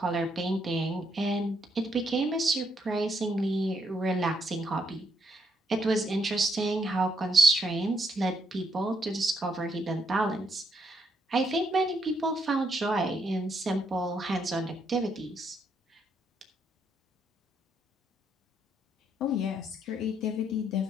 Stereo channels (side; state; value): both; normal; correlation 0.75